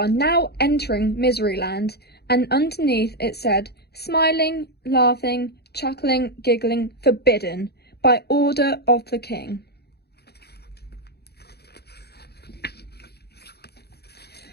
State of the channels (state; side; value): late; right; 0.47 ms